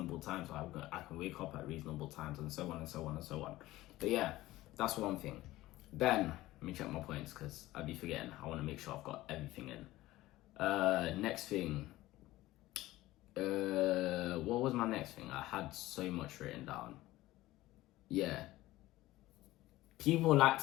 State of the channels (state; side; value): quieter; right; 17.0 dB